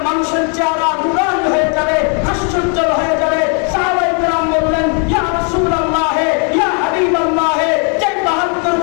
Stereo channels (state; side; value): quieter; right; 38.1 dB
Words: মানুষের চেহারা নুরানি হয়ে যাবে, হাস্যোজ্জ্বল হয়ে যাবে। সাহাবায়ে কেরাম বললেন ইয়া রাসূলুল্লাহ, ইয়া হাবিবাল্লাহ, যে 72